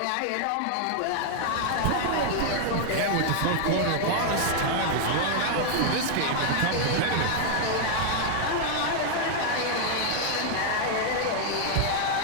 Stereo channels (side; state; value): both; different; correlation 0.00